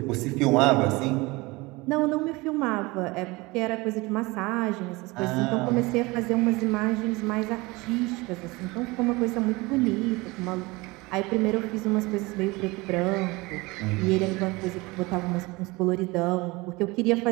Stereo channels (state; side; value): quieter; left; 23.3 dB